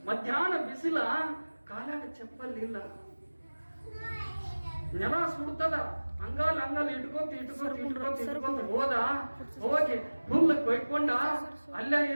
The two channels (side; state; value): both; inverted; correlation -1.00